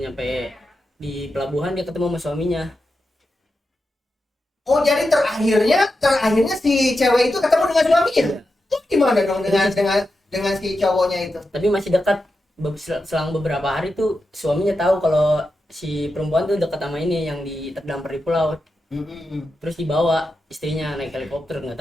di pelabuhan dia ketemu sama suaminya. Oh, jadi terakhirnya si cewek itu ketemu dengan suaminya. Terus gimana dong dengan si cowoknya itu? Tapi masih dekat. Selang beberapa hari tuh suaminya tahu kalau si perempuan tuh dekat sama ini yang terdampar di pulau. Terus dibawa istrinya naik helikopter, nggak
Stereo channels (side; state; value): both; normal; correlation 0.89